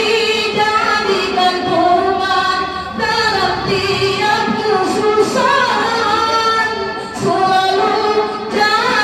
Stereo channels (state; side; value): identical; both; correlation 1.00